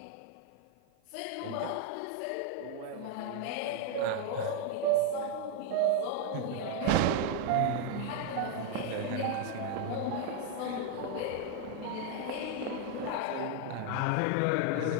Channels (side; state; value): both; different; correlation 0.01